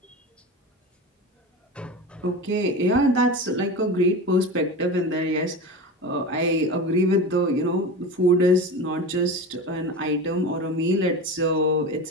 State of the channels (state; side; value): normal; both; correlation 0.27